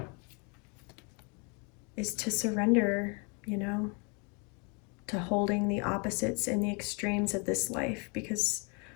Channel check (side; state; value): right; quieter; 33.6 dB